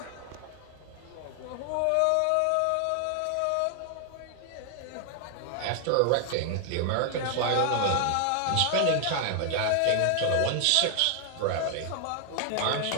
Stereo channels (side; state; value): both; different; correlation 0.00